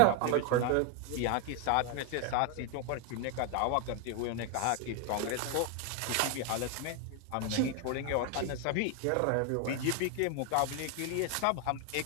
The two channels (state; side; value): different; both; correlation 0.01